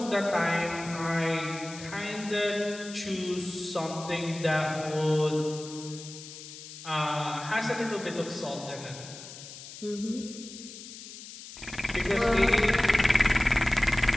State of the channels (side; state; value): left; noise; hiss, 14 dB below the sound